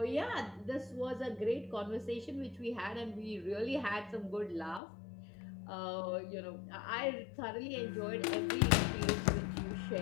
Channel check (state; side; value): drops out; right; at 4.8 s